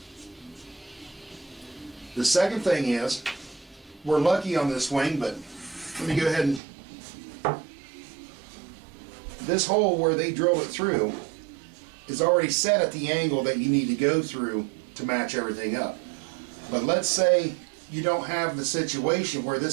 second thing is, we're lucky on this wing, but let me go ahead and... This hole where they drilled it through is already set at the angle that you need to go through to match everything up. But let's say you don't have the situation where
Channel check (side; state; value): left; drops out; at 6.6 s